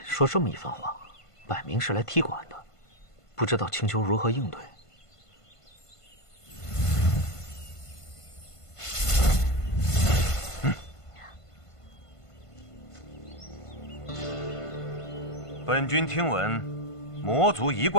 说这么一番话，摆明是来踢馆的，不知道青丘如何应对。本君听闻，魔族一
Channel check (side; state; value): right; late; 1.5 ms